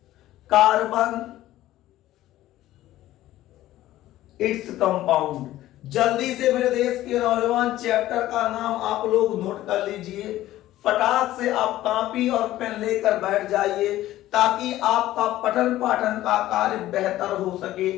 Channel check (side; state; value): right; quieter; 14.8 dB